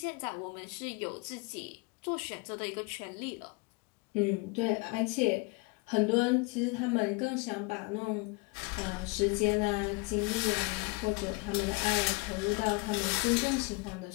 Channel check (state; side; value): quieter; right; 27.5 dB